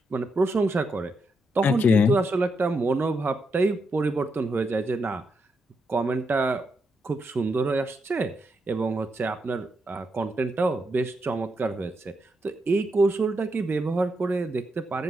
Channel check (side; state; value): both; normal; correlation 0.82